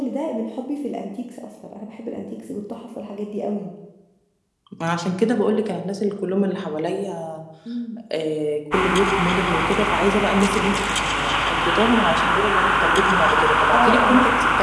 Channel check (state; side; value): identical; both; correlation 1.00